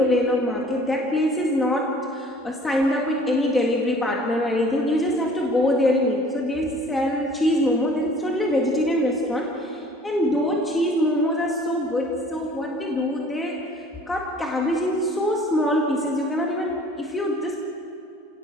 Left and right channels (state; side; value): normal; both; correlation 0.52